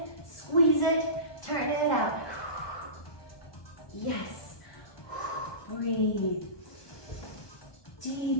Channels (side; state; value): right; late; 1.2 ms